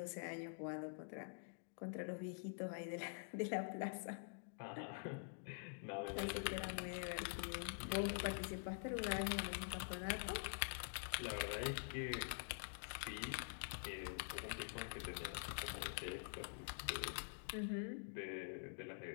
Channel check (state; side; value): silent; right; digital silence